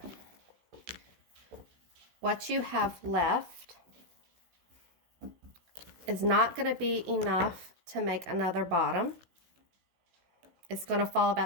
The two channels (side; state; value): left; late; 16 ms